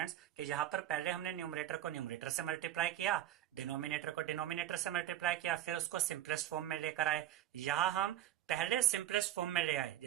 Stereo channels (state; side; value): quieter; left; 12.7 dB